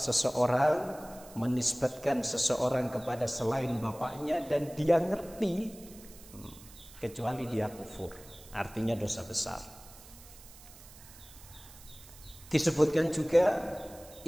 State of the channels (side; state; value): right; noise; hiss, 20 dB below the sound